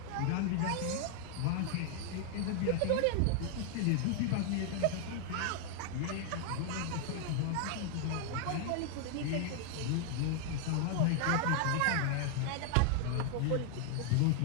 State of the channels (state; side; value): different; both; correlation 0.00